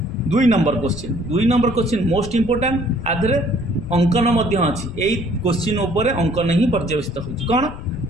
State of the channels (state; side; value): noise; left; rumble, 11 dB below the sound